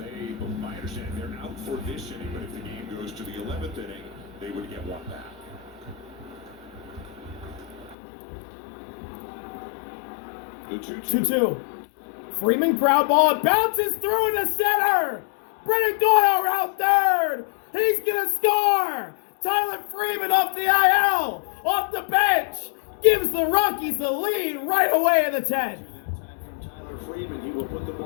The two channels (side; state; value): right; drops out; at 8.0 s